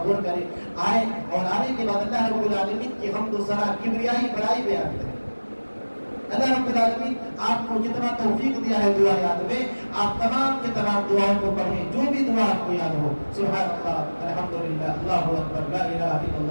غور کرے، آئے اور آنے کے بعد اللہ رب العالمین کی حمد و ثنا، کبریائی بڑائی بیان کرے۔ اللہ رب العالمین آپ کو جتنا توفیق دیا ہے دعا یاد میں، آپ تمام کے تمام دعاؤں کو پڑھیں، جو بھی دعا آپ کو یاد ہو، سبحان اللہ، الحمدللہ، اللہ اکبر، لا الہ الا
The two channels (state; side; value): inverted; both; correlation -1.00